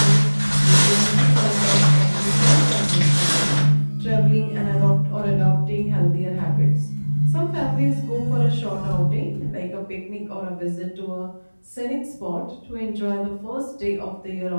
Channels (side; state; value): both; inverted; correlation -1.00